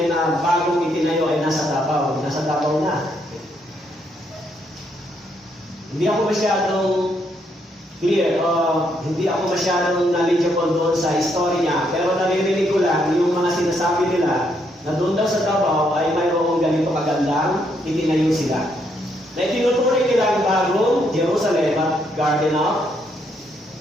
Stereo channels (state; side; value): normal; both; correlation 0.74